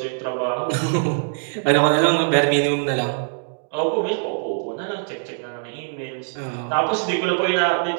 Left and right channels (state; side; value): silent; left; digital silence